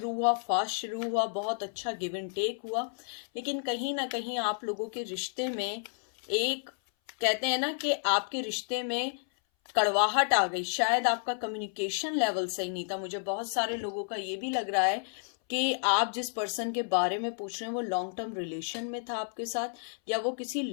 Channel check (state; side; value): silent; right; 57 dB below the other